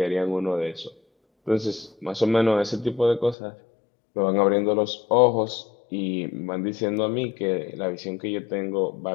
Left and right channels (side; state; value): right; drops out; at 3.4 s